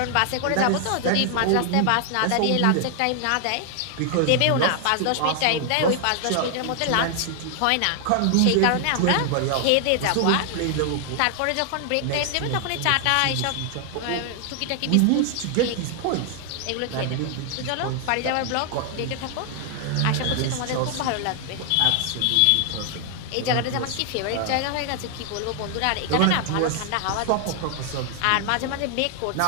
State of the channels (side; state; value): both; different; correlation 0.00